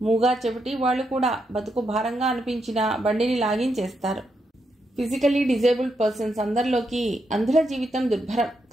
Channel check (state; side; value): normal; both; correlation 0.82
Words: మూగా చెవిటి వాళ్ళు కూడా బతుకు భారంగా అనిపించినా బండిని లాగించేస్తారు. ఫిజికల్లీ డిజేబుల్డ్ పర్సన్స్ అందరిలోకి అంధుల జీవితం దుర్భరం.